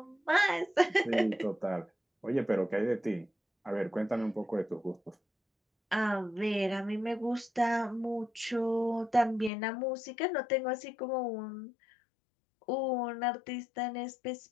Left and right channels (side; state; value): right; drops out; at 9.5 s